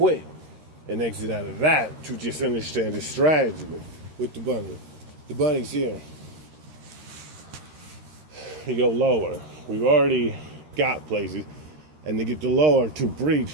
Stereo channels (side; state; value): left; late; 13 ms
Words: and exit out of that to just understand the strategy with the bunny. The bunny's here. You go lower. We've already got places. And to get the lower to